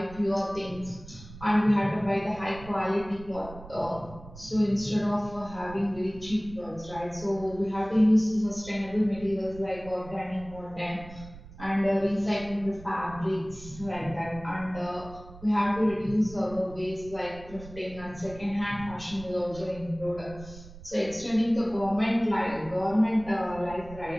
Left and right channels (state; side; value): noise; right; rumble, 17 dB below the sound